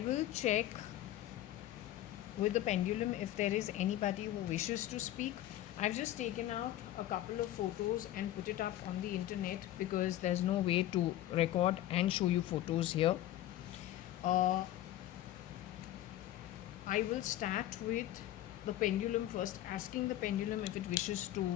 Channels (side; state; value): right; quieter; 13.8 dB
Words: will check with the pendulum if there is anybody who wishes to speak. I've just taken out a couple of photos and put it up on the internet because there's no way to record and show you photos here. Uh, I will start with the pendulum first, asking the pendulum if it wishes